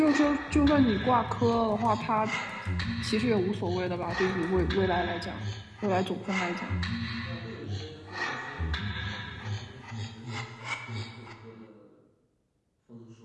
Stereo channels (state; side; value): identical; both; correlation 1.00